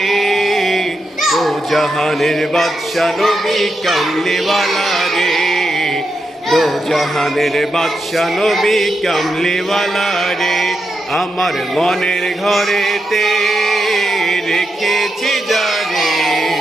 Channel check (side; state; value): both; normal; correlation 0.85